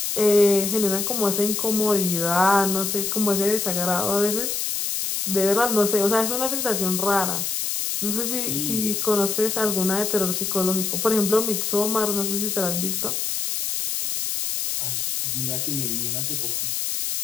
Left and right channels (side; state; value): left; noise; hiss, 1 dB below the sound